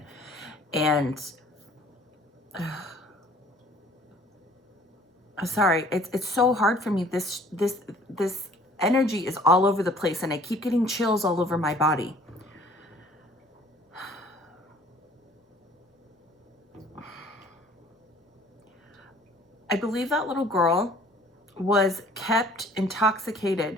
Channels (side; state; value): both; normal; correlation 0.54